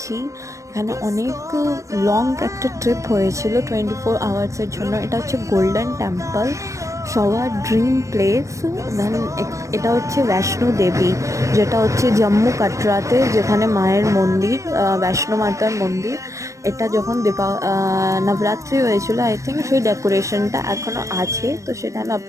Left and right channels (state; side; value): late; left; 0.15 ms